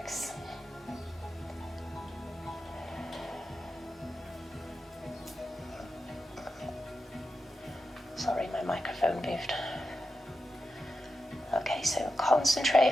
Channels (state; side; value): normal; both; correlation 0.90